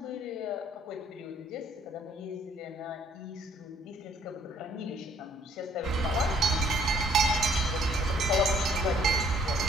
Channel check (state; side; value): normal; both; correlation 0.62